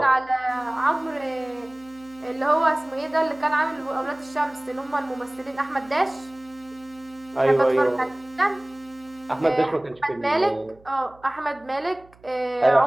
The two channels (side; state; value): right; noise; hum, 27 dB below the sound